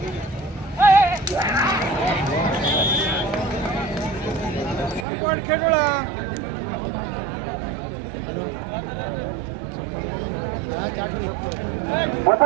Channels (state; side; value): drops out; left; at 5.1 s